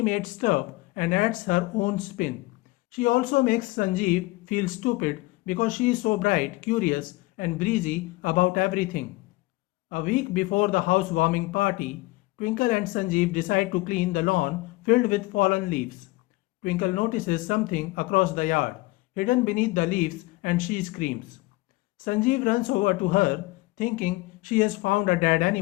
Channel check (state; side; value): quieter; right; 21.1 dB